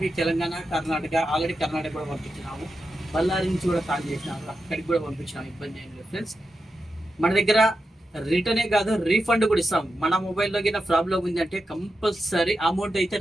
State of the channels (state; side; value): normal; both; correlation 0.89